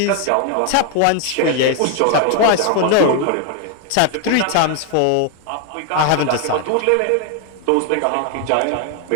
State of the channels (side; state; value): both; different; correlation 0.00